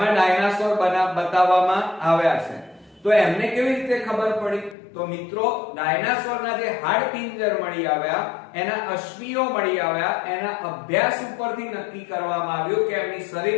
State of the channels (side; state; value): right; drops out; at 4.8 s